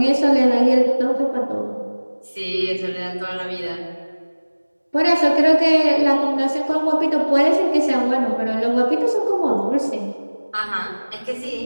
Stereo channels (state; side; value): inverted; both; correlation -1.00